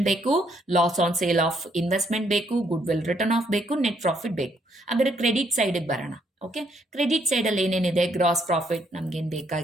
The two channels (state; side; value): normal; both; correlation 0.71